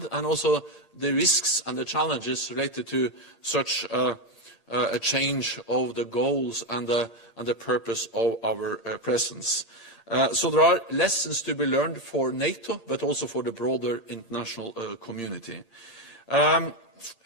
and also the risks and the challenges related to such a change of the goals and the purpose of our presence. So there are lessons to be learned for NATO, but also for the broader international community.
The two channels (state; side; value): late; right; 8.7 ms